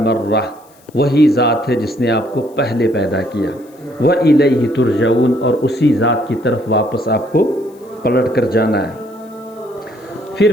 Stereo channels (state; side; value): noise; left; hiss, 30 dB below the sound